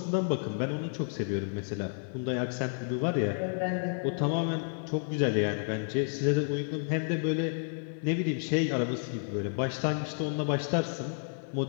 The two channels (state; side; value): silent; right; 57 dB below the other